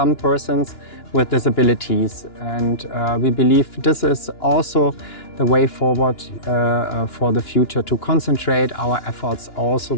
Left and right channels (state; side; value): late; right; 2.9 ms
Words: persons with disabilities. And we believe this is also the way forward for the future, to concentrate our efforts also